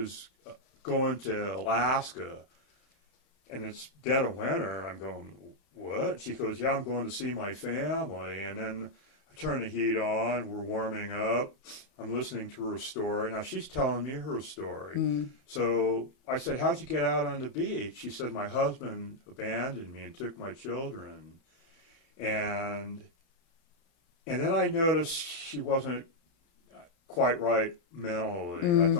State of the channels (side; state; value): right; late; 34 ms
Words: going to Alaska, and it's dead of winter. And I'm going, what? She goes, yeah, I'm going to see my family. And then I turn the heat on. We're warming up. I'm listening to her story. Now, she's telling me her story. So I said, how'd you get out on the beach? She said, my husband abandoned me and took my children. And then I noticed she wasn't quite right mentally. I